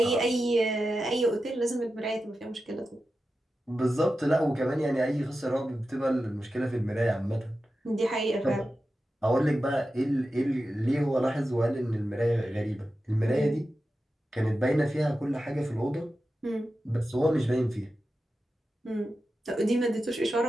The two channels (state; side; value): normal; both; correlation 0.92